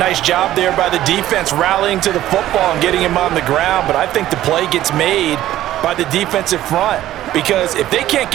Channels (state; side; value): quieter; left; 13.7 dB